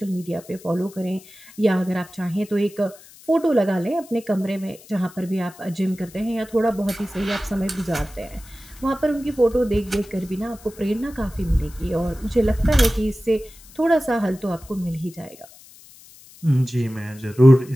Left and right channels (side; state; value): left; noise; hiss, 22 dB below the sound